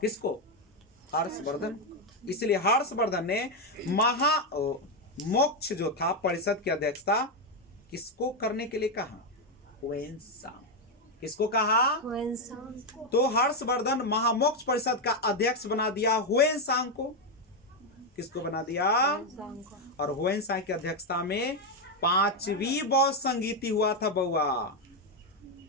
किसको? हर्षवर्धन। इसलिए हर्षवर्धन ने महामोक्ष जो था परिषद की अध्यक्षता किसको करने के लिए कहा? हुएनसांग। किसको कहा? हुएनसांग। तो हर्षवर्धन महामोक्ष परिषद का अध्यक्ष बना दिया हुएनसांग को। किसको बना दिया? और हुएनसांग की अध्यक्षता में 5वीं बौद्ध संगीति हुआ था बउआ।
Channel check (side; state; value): both; normal; correlation 0.05